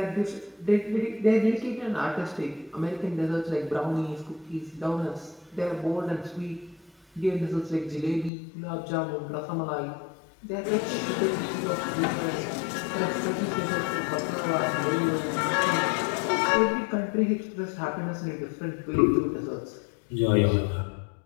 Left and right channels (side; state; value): right; drops out; at 8.3 s